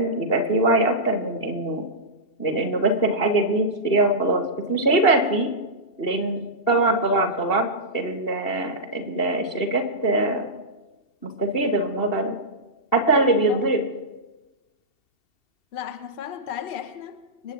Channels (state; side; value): late; right; 2.7 ms